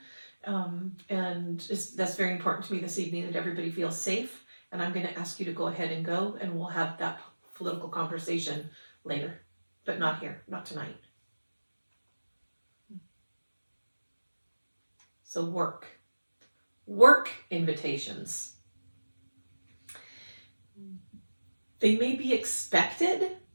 And that's very important to me this evening, that everybody feels safe. And I'm going to ask you to go ahead and go, and we'll have that political conversation later, but not here, not tonight. So work invitations. They may be expected,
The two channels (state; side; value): inverted; both; correlation -1.00